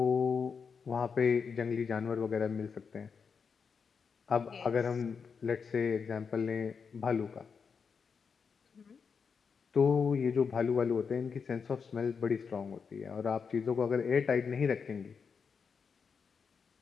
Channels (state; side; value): quieter; right; 5.9 dB